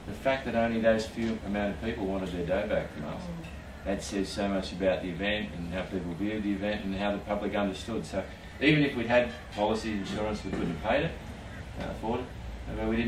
the fact that only those few amount of people wanted their dough back from us, that says so much about the event and how people viewed the event and how the public understood. So even if we'd had policy insurance, we couldn't have paid it, afford it. But we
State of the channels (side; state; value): both; identical; correlation 1.00